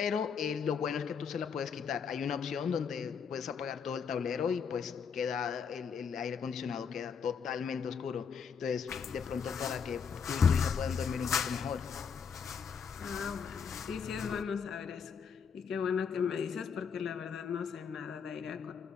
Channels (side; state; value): right; quieter; 6.5 dB